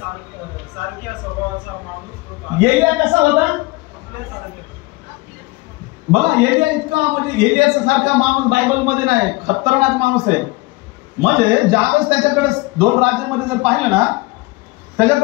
स्वभावाचा माणूस होता. एलिया कसा होता बघा. एलिया इतका म्हणजे एलियाचा सारखा माणूस बायबल मध्ये नाही, खतरनाक माणूस आहे. म्हणजे ज्यावेळेस त्याच्याकडे 2 राज्यामध्ये जर पाहिलं ना,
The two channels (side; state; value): right; quieter; 22.6 dB